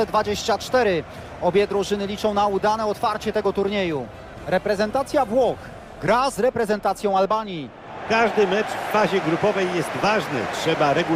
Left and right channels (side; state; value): both; identical; correlation 1.00